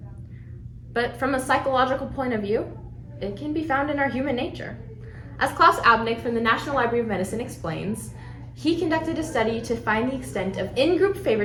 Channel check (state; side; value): identical; both; correlation 1.00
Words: But from a psychological point of view, it can be found in our human nature. As Klaus Abnick from the National Library of Medicine explains, he conducted a study to find the extent of in-group